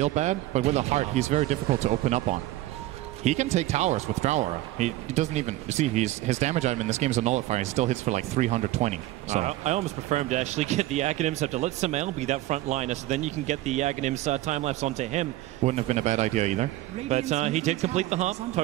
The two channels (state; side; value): quieter; left; 16.2 dB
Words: bad. But with a heart, he's very difficult to open up on. He can take towers with Drower. He doesn't even... You see, his damage item in this game is a Nullifier. He still hits for like 320. So I almost prefer him to actually get the Aghanim Scepter. Let Samael be that front liner, so then you can get the Aghanim's time-lapse onto him. Wouldn't have been a bad idea either. But he did complete the hub.